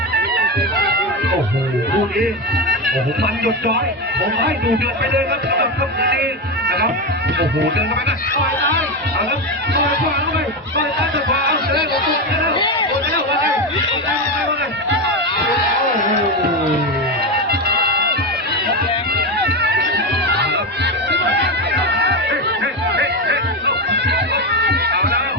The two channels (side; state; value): both; normal; correlation 0.15